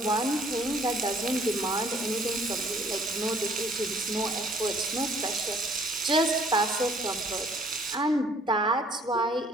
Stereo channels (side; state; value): both; normal; correlation 0.59